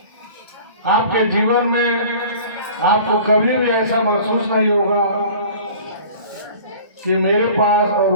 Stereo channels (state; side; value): inverted; both; correlation -0.44